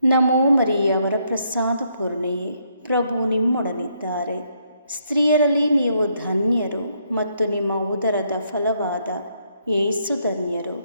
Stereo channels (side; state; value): both; inverted; correlation -0.73